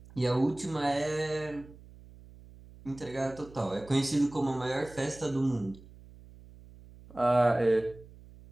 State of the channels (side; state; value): right; noise; hum, 21 dB below the sound